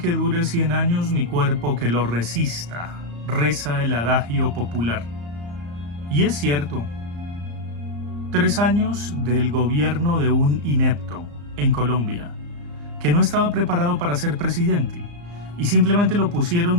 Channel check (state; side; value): late; left; 34 ms